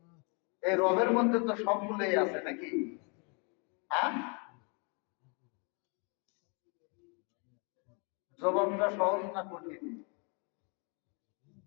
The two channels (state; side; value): quieter; right; 34.9 dB